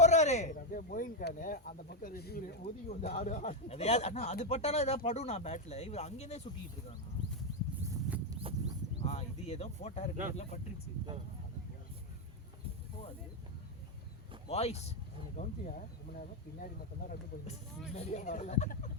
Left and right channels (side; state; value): both; normal; correlation 0.05